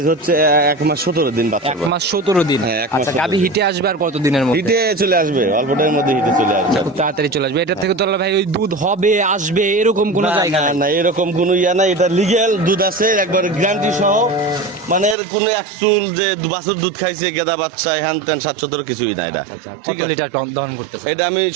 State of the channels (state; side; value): drops out; left; at 15.2 s